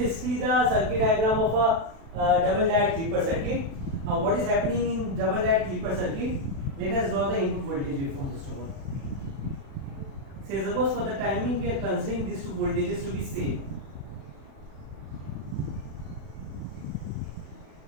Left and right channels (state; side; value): late; left; 36 ms